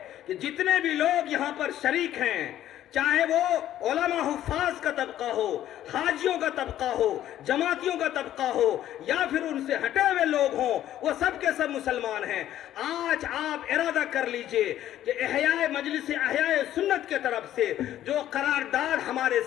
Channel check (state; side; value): quieter; right; 12.3 dB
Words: کہ جتنے بھی لوگ یہاں پر شریک ہیں، چاہے وہ علماء حفاظ کا طبقہ ہو، حاجیوں کا طبقہ ہو، جماعتیوں کا طبقہ ہو، یا پھر ان سے ہٹے ہوئے لوگ ہوں، وہ سب کے سب مسلمان ہیں۔ آج آپ ارادہ کر لیجئے کہ مجلس احیاء سنت کے طرف سے جو قرارداد ہمارے